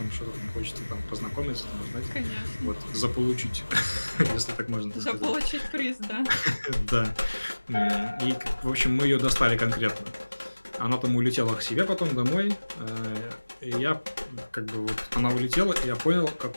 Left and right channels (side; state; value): both; inverted; correlation -1.00